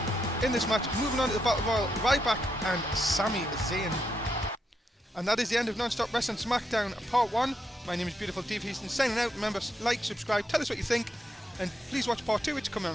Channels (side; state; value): both; normal; correlation 0.81